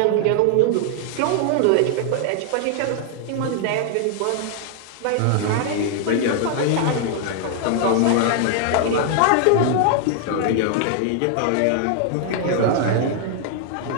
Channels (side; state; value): both; different; correlation 0.00